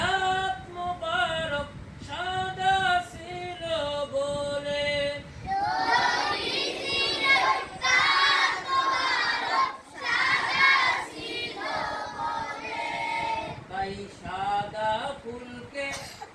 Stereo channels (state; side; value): identical; both; correlation 1.00